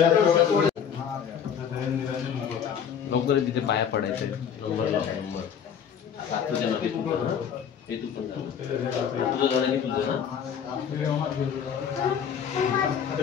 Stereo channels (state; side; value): quieter; right; 7.9 dB